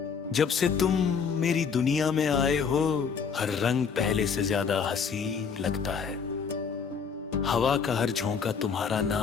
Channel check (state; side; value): quieter; right; 6.1 dB